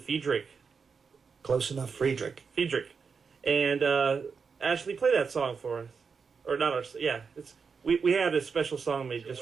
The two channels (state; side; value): quieter; left; 5.5 dB